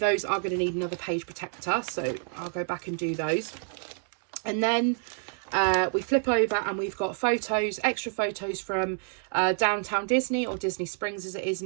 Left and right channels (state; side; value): silent; left; 59 dB below the other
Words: are going to need another page protector. So I'll go back and do those. And then we flip over and we've got photos, extra photos from Downtown Disney, or Disney Springs as it is